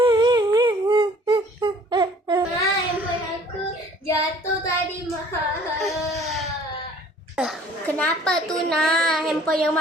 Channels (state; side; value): normal; both; correlation 0.54